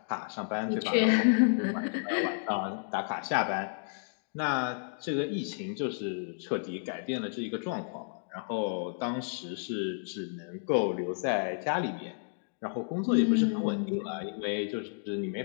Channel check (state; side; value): silent; right; digital silence